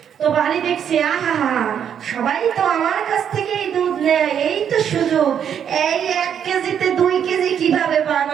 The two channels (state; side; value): quieter; left; 8.6 dB